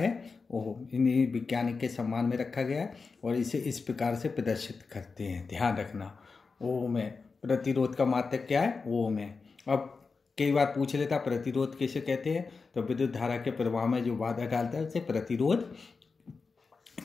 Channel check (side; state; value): right; quieter; 4.6 dB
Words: ओम। इन्हीं वैज्ञानिक के सम्मान में रखा गया है और इसे इस प्रकार से प्रदर्शित करते हैं, ध्यान रखना। ओम है। प्रतिरोध का मात्रक क्या है? ओम है। अब कई बार पूछ लेता प्रतिरोध किसे कहते हैं, तो विद्युत धारा के प्रवाह में जो बाधा डालता है उसे प्रतिरोध